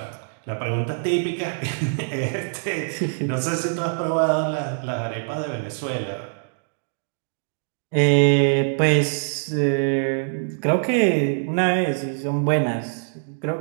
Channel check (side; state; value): left; silent; digital silence